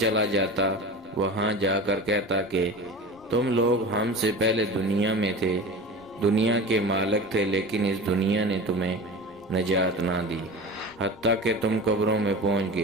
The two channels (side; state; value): right; noise; rumble, 29 dB below the sound